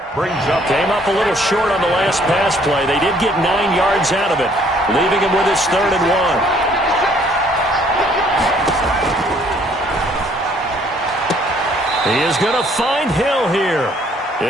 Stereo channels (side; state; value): both; normal; correlation 0.62